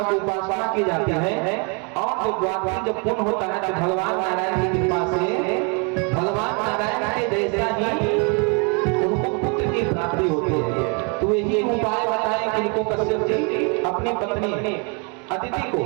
की उपासना की जाती है और जो द्वादशी जब पूर्ण होता है तो भगवान नारायण की कृपा से भगवान नारायण के जैसा ही उनको पुत्र की प्राप्ति होती है। तो यही उपाय बताएं कि इनको कश्यप जी अपनी पत्नी अदिति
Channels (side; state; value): left; quieter; 34.3 dB